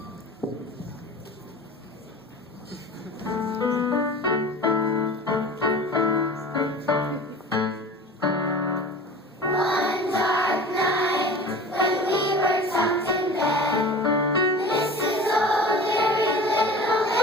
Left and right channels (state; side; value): normal; both; correlation 0.38